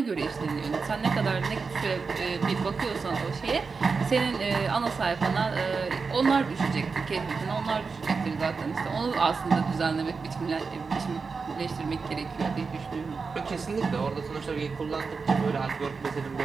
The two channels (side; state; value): left; quieter; 4.8 dB